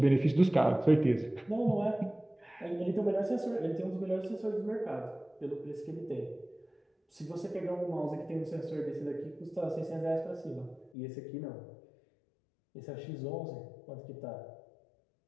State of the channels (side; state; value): right; drops out; at 10.9 s